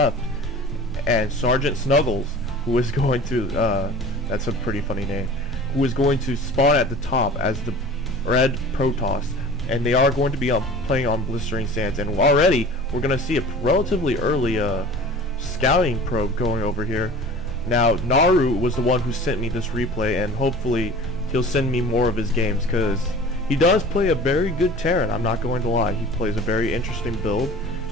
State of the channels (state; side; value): normal; both; correlation 0.42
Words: and SgtSnuggles, who is going to, that's a pretty funny name, who is going to spawn at the top as the red Protoss. And they are going to be playing on Blistering Sands, and already we're going to see a relatively early scouting probe going over here. Now NarU was the one who sent me this replay, and hopefully he'll send me more of his games, because he does play a very good Terran. I'm not going to lie, he plays a very interesting build,